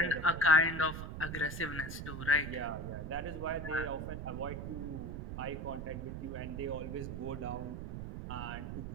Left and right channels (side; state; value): right; noise; rumble, 6 dB below the sound